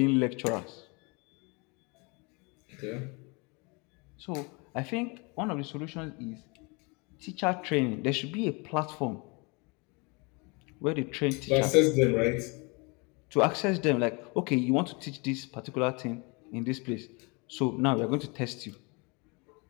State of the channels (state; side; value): quieter; right; 29.6 dB